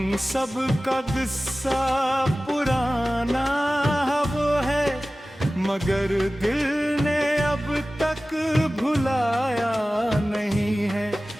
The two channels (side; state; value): both; normal; correlation 0.97